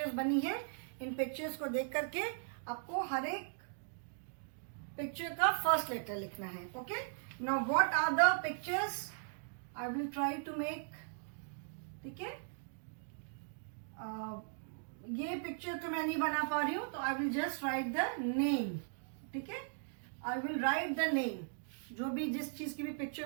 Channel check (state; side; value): silent; left; digital silence